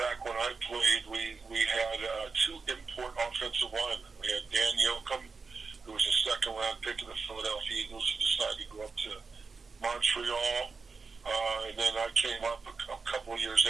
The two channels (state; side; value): quieter; left; 4.6 dB